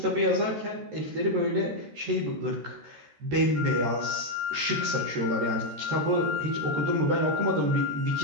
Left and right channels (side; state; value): left; late; 13 ms